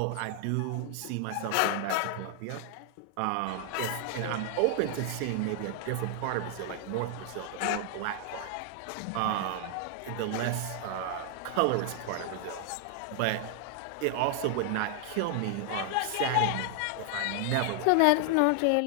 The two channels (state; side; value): different; both; correlation 0.00